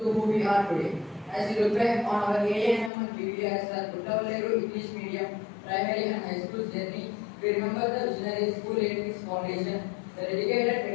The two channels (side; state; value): right; drops out; at 2.9 s